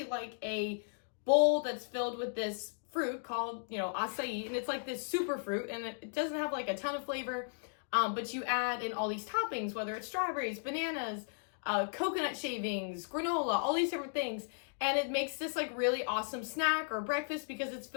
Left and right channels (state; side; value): silent; right; digital silence